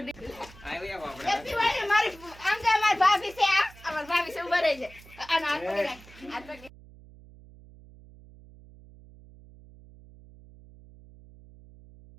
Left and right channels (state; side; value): noise; right; hum, 21 dB below the sound